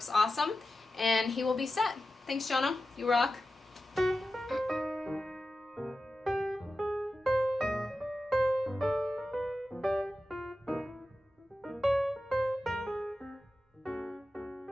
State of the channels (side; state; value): both; normal; correlation 0.93